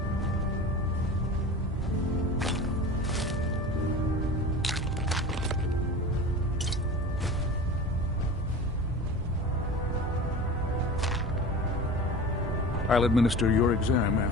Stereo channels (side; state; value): both; normal; correlation 0.34